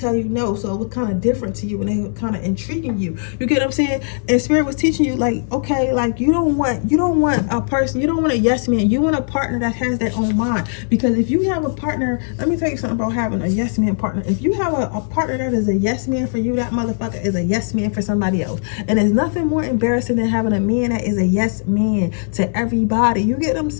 you no, so it was kind of different to you and they were kind of intriguing you. You get what I'm saying? And Spirit was teaching you, like, okay, like you don't want a person, you don't want a yes man, you want a partner that has their own mind. Because if you have a partner, let me tell you something about having a yes man partner. If you have a partner that is a yes man for you, that motherfucker is a yes man for somebody else. And there's nothing more embarrassing than having a man that is a yes man to everybody. You get what I'm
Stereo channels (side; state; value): right; silent; digital silence